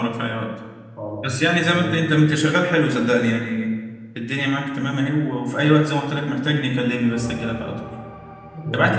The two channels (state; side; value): identical; both; correlation 1.00